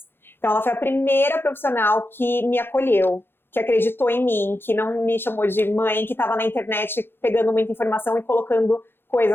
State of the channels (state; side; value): late; right; 0.10 ms